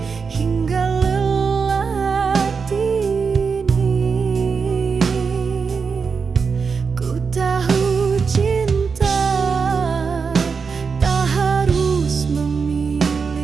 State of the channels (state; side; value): quieter; left; 5.4 dB